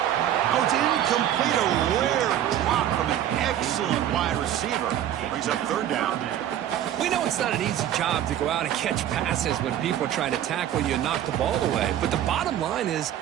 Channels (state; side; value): quieter; left; 11.3 dB